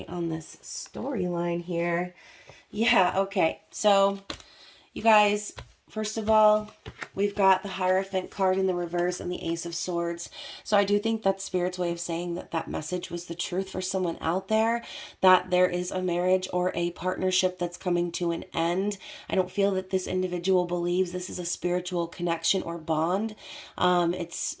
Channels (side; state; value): both; identical; correlation 1.00